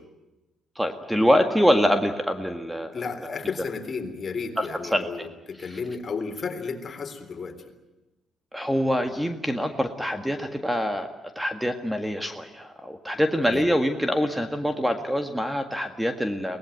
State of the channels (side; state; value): both; normal; correlation 0.92